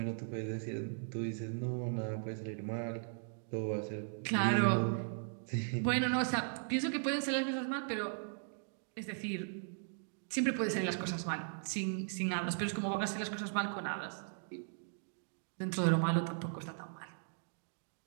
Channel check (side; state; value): left; silent; digital silence